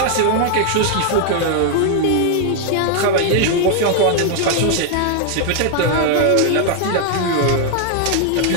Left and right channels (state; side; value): different; both; correlation 0.00